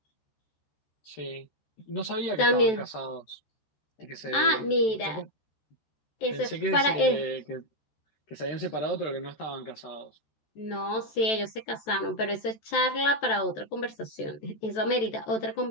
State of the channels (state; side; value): late; right; 14 ms